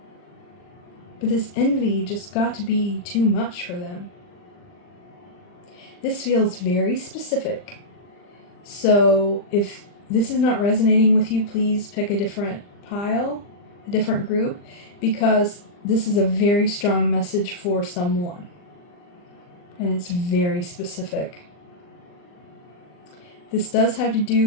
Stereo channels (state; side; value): late; right; 40 ms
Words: But this envy just got to be too much for them. This feels very specific. So if this is not resonating with you, please pick a different pile, a different group, because this is a very strong message for someone. And it's very specific. This does have to